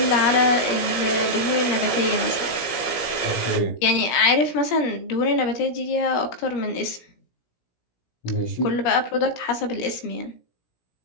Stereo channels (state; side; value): late; right; 17 ms